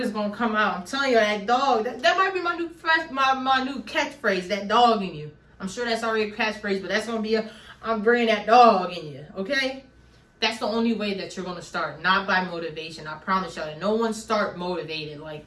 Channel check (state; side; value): identical; both; correlation 1.00